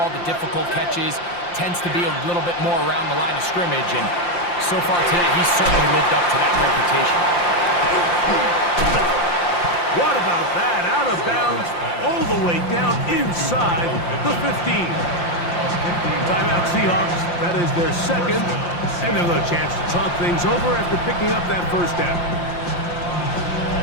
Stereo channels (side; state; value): right; late; 5.7 ms